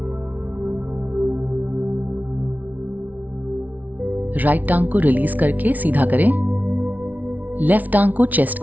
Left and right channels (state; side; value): late; left; 0.075 ms